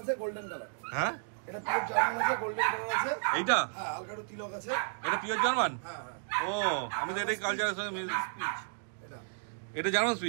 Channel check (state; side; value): silent; left; digital silence